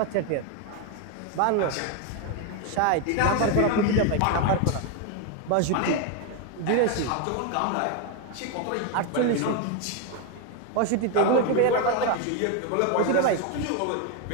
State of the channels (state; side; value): different; both; correlation 0.01